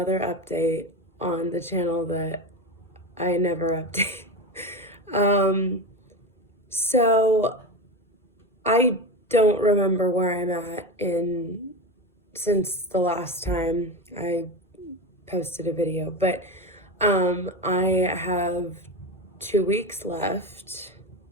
update on the channel that I never update. Um, so I don't remember where I'm at in since the last time I posted a video, but I have 2 weeks left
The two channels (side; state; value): both; normal; correlation 0.21